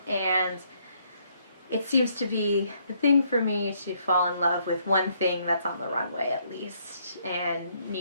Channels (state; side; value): inverted; both; correlation -0.70